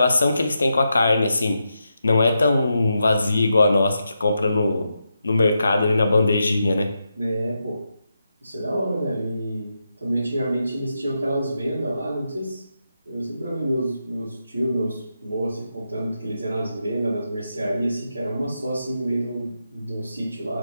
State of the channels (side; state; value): both; inverted; correlation -0.85